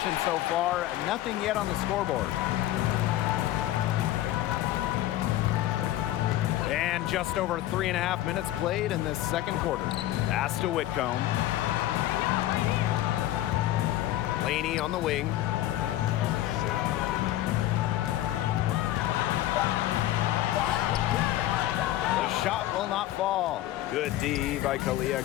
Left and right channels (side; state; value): right; quieter; 14.3 dB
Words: so far, nothing yet on the scoreboard. And just over 3.5 minutes played in this second quarter. Pass to Whitcomb. Laney on the wing. The shot will not fall. Good D by Kalia